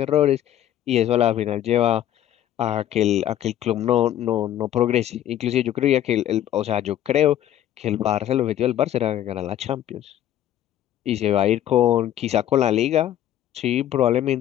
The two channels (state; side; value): quieter; right; 11.9 dB